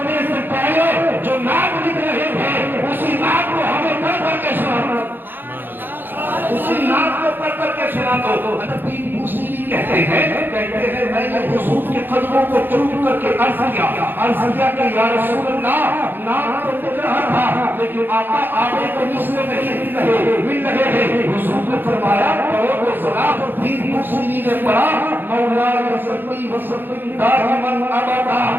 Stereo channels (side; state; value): left; late; 0.096 ms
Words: سے پہلے جو نعت لکھ رہے تھے اسی نعت کو ہمیں پڑھ کر کے سنا، اسی نعت کو پڑھ کر کے سنا دو۔ الدین بوصیری کہتے ہیں میں نے حضور کے قدموں کو چوم کر کے عرض کیا کہ یا رسول اللہ نعت تو لکھ رہا تھا لیکن آقا آگے تو مسئلے نہیں مل رہے ہیں۔ حضور نے فرمایا پڑھو تو ذرا۔ الدین بوصیری نے پڑھا مولا صلی وسلم دائما ابدا،